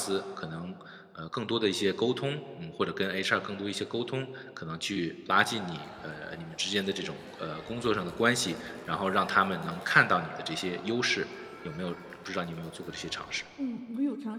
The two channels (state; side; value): identical; both; correlation 1.00